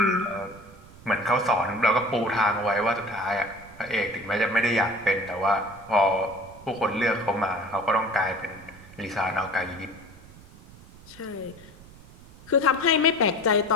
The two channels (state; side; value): noise; right; rumble, 21 dB below the sound